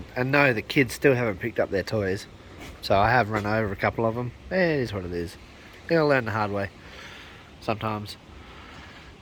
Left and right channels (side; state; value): both; identical; correlation 1.00